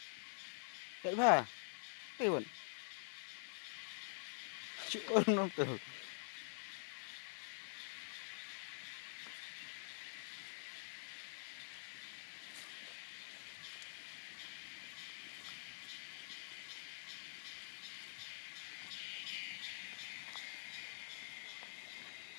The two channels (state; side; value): silent; right; digital silence